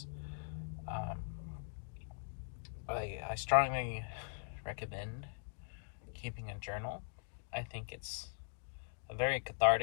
I strongly recommend keeping a journal. I think it's a very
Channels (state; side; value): silent; right; digital silence